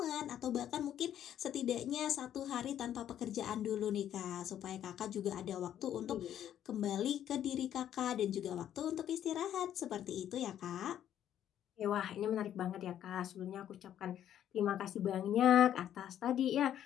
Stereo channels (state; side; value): quieter; right; 10.7 dB